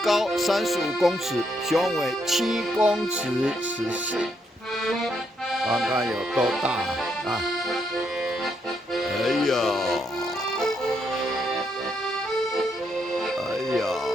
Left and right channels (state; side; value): normal; both; correlation 0.77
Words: 高35公尺，雄伟7公尺14。看看有多大啊！哎呀！